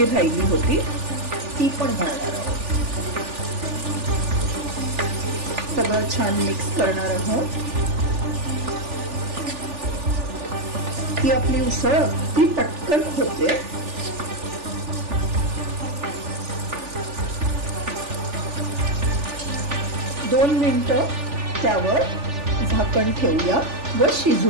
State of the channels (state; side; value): late; left; 3.4 ms